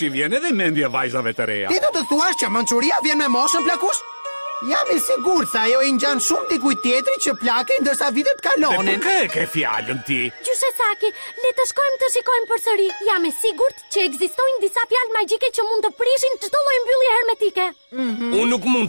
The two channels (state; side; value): inverted; both; correlation -1.00